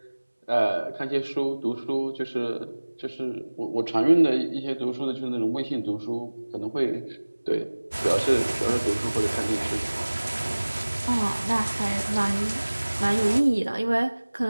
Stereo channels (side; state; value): both; inverted; correlation -1.00